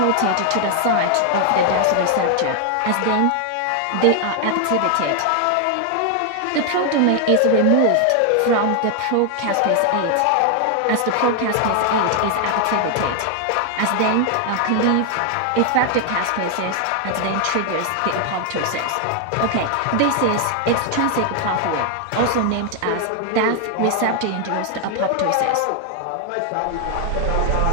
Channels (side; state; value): both; different; correlation 0.00